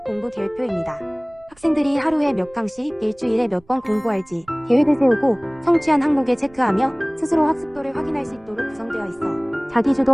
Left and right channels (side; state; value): right; noise; rumble, 29 dB below the sound